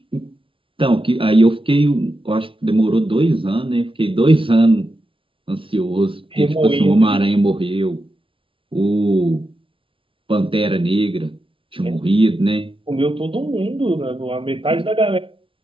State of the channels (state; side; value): late; left; 0.25 ms